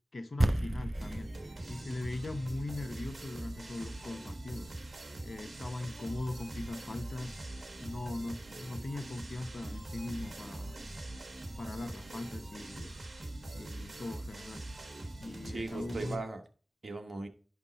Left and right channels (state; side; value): normal; both; correlation 0.96